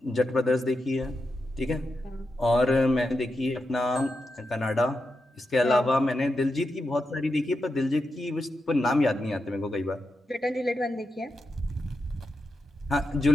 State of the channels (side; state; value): both; normal; correlation 0.87